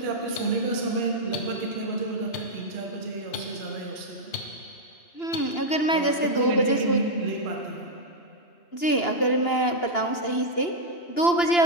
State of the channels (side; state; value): right; late; 2.9 ms